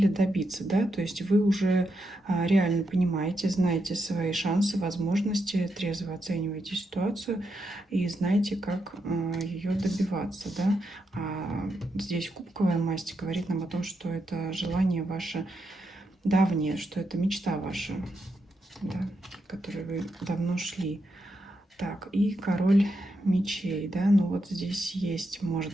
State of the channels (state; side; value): normal; both; correlation 0.83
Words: добиться, да, то есть вы уже реально понимаете, знаете свои шансы, возможности, трезво оцениваете ситуацию и знаете, как ее добиваться, да. Здесь кубковая масть говорит нам о том, что это желание ваше давнее, что это мечта ваша, да, к которой вы давно шли. Так, и король мечей, да, ну вот здесь есть,